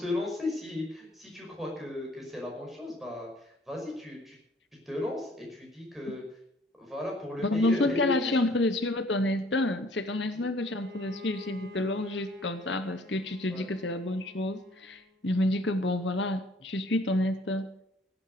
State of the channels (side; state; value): both; normal; correlation 0.57